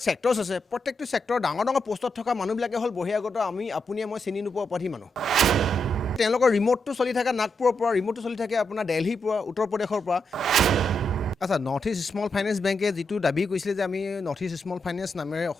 ছেক্টৰ্ছ আছে প্ৰত্যেকটো ছেক্টৰ ডাঙৰ ডাঙৰ পোষ্টত থকা মানুহবিলাকে হ'ল বহিৰাগত আমি আপুনিয়ে মই চিনি নোপোৱা অপৰাধী মানুহ তেওঁলোকৰ ৰিম'টটো চলি থাকে নাগপুৰৰ পৰা ৰিম'টটো চলি থাকে আপোনাৰ দিল্লীৰ পৰা উত্তৰ প্ৰদেশৰ পৰা আচ্ছা নৰ্থ ইষ্ট স্মল ফাইনেন্স বেংকে যিটো দাবী কৰিছিলে যে আমি নৰ্থ ইষ্ট স্মল ফাইনেন্স নামেৰে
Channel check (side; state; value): both; normal; correlation 0.83